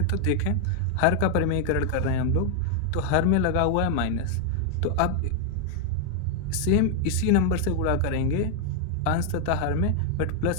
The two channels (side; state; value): both; different; correlation 0.00